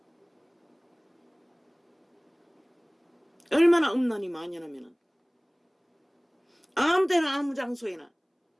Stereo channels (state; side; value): identical; both; correlation 1.00